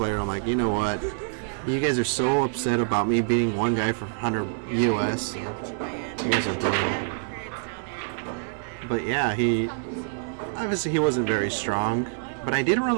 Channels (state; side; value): silent; left; digital silence